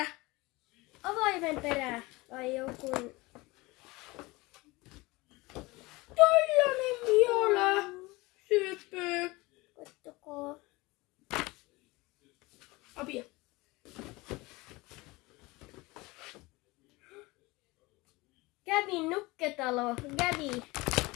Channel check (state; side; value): quieter; right; 22.4 dB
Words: Avaimen perä vai joku. Tällainen viola. Syöpö. Kattokaa. Apia. Gabin nukketalo. Gabi.